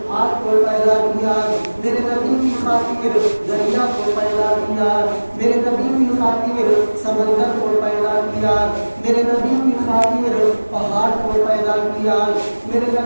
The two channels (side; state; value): both; inverted; correlation -1.00